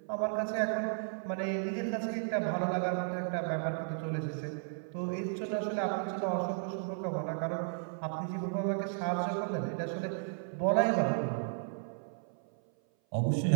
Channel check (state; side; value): silent; left; 55 dB below the other